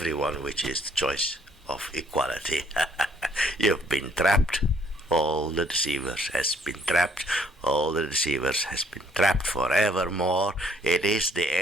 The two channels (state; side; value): normal; both; correlation 0.64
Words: which is the choice of equality. You've been trapped. All the deceivers has been trapped. All the deceivers has been trapped forevermore. It is the